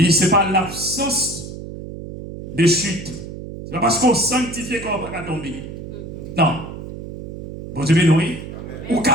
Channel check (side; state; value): right; noise; hum, 10 dB below the sound